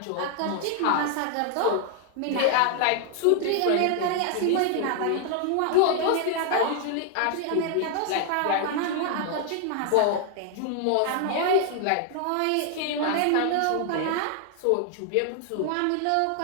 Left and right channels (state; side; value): different; both; correlation 0.00